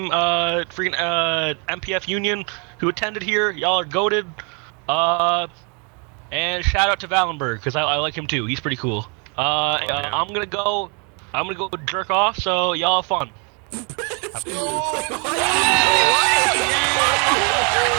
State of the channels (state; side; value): quieter; left; 35.6 dB